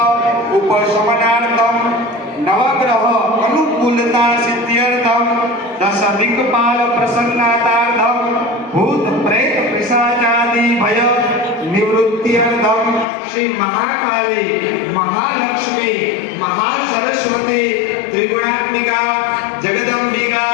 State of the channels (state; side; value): drops out; right; at 13.1 s